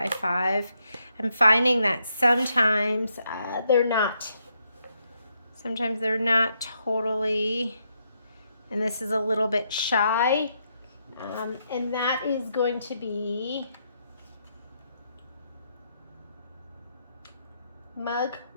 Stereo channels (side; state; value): both; inverted; correlation -0.79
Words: 5. I'm finding that sometimes they're not. Sometimes they're not totally, and this is a little bit shy. And that is going to be mug